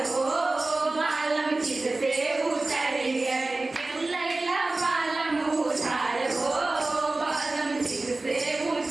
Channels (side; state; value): left; quieter; 3.1 dB